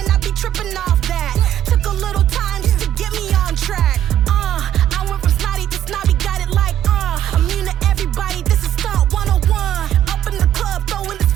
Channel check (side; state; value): left; quieter; 11.2 dB